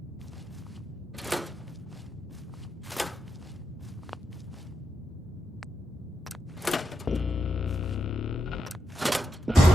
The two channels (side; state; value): both; normal; correlation 0.85